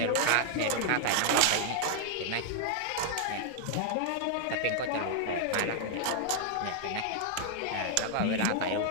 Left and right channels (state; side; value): different; both; correlation 0.00